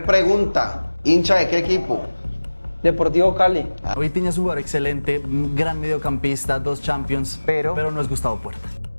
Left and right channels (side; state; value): both; inverted; correlation -1.00